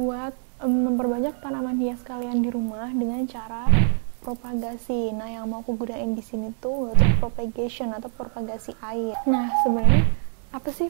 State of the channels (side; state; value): left; silent; digital silence